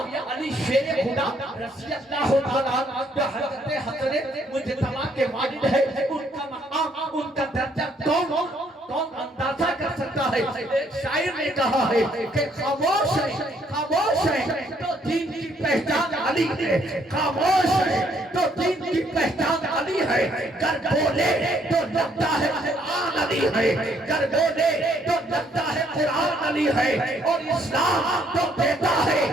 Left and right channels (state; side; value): normal; both; correlation 0.68